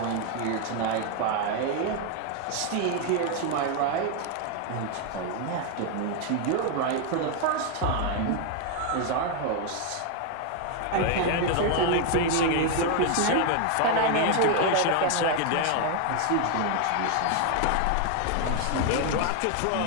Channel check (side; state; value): both; different; correlation 0.01